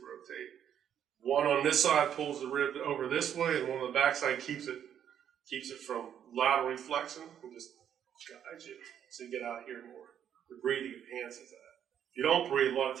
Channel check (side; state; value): left; quieter; 9.3 dB